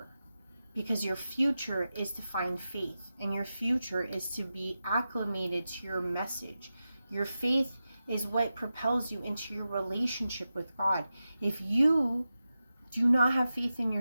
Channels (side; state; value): both; inverted; correlation -0.92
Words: Because your future is to find faith, and your future is to be acclimated to your message. Your faith is what propels you into your relationship with God. If you do not have faith in